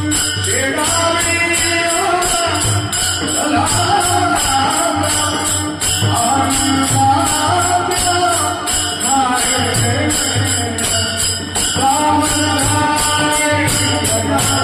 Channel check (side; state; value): both; identical; correlation 1.00